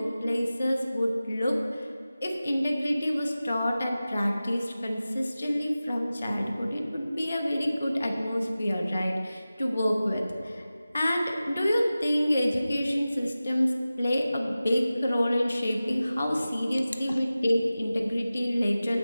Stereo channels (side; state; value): both; inverted; correlation -0.96